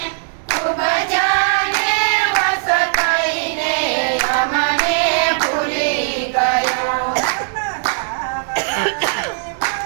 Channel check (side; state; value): left; silent; 67 dB below the other